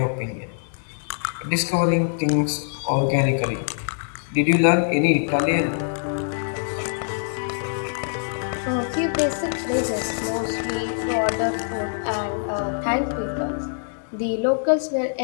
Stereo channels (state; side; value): silent; right; digital silence